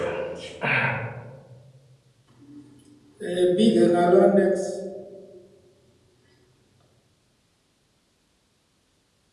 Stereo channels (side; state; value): both; identical; correlation 1.00